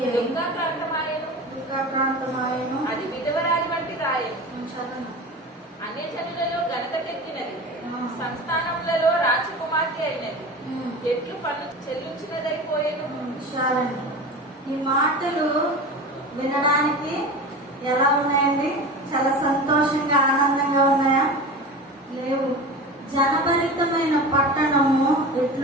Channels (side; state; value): both; normal; correlation 0.31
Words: ప్రాంతమాయను అది విధవరాజు వంటి రాయను. చదవండి. అన్యజనులలో ఘనతకెక్కినది, సంస్థానములలో రాజకుమార్తె అయినది, ఎట్లు పన్ను చెల్లించినదైపోయేను. చాలండి. ఈ మాటలు వినడానికి ఎలా ఉన్నాయండి? చాలా సంతోషంగా ఆనందంగా ఉన్నాయా? లేవు. జనభరితమైన పట్టణము